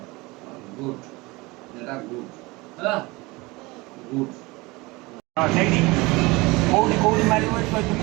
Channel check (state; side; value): quieter; left; 23.3 dB